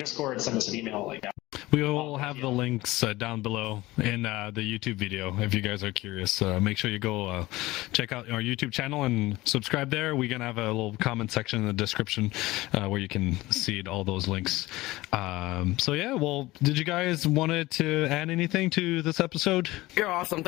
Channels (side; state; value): right; quieter; 19.0 dB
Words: send us an email like that. We will have the links down below in the YouTube video if you guys are curious. Make sure you go check out our YouTube channel and subscribe there. We're going to have a little comment section in the description where you can see all those links. So yeah, well, did you guys want to add anything to this episode? You're awesome.